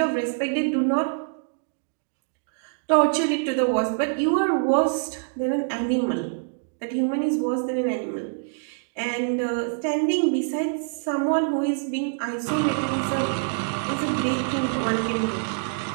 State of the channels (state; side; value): silent; left; digital silence